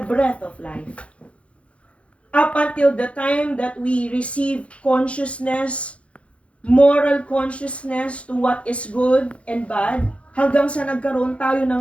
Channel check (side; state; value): right; late; 0.062 ms